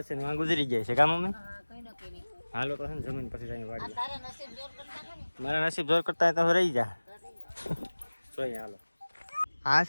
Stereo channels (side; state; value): both; inverted; correlation -1.00